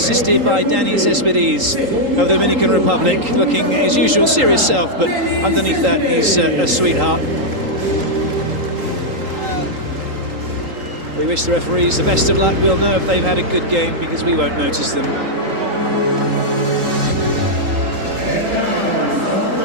by Danny Cespedes of the Dominican Republic, looking his usual serious self, but underneath that he's a sweetheart. We wish the referees the best of luck. We'll know if they've had a good game because we won't notice them.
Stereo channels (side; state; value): left; late; 3.8 ms